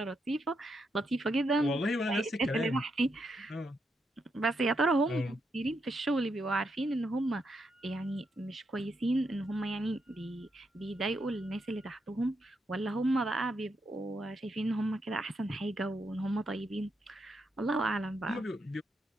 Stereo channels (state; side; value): normal; both; correlation 0.81